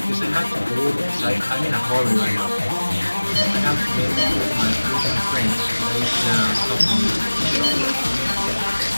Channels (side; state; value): both; inverted; correlation -1.00